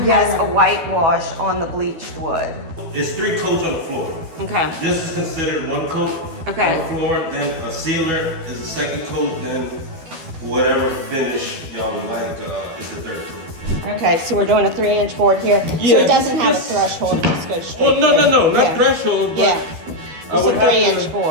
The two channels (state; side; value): late; left; 12 ms